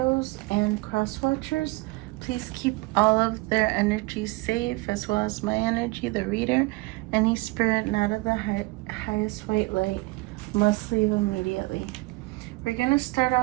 and cross watchers. Please keep all of their energies safe, as well as my energy, the reader. Any spirit not of the highest white light must leave immediately. We're gonna start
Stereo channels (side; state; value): left; quieter; 23.5 dB